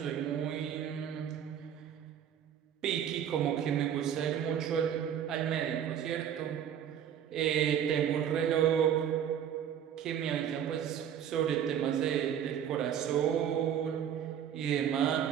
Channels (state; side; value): quieter; left; 9.2 dB